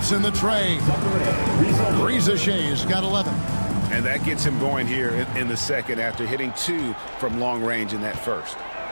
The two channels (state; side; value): inverted; both; correlation -1.00